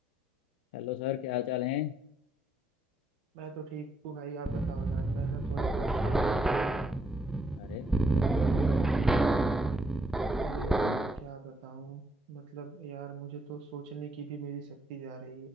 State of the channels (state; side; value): normal; both; correlation 0.75